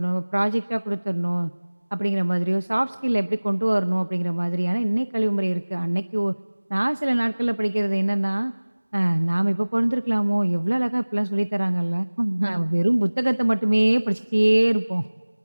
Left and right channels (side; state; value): both; inverted; correlation -1.00